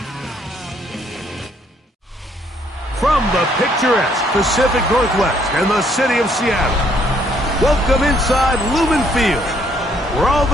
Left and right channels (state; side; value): normal; both; correlation 0.67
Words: From the picturesque Pacific Northwest and the city of Seattle, welcome inside Lumen Field, where all